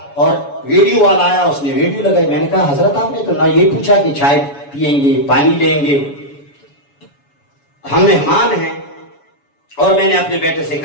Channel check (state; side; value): late; right; 7.1 ms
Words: اور ویڈیو والا آیا، اس نے ویڈیو لگائی۔ میں نے کہا حضرت آپ نے تو نہ یہ پوچھا کہ چائے پیئیں گے، پانی لیں گے، ہم مہمان ہیں۔ اور میں نے اپنے بیٹے سے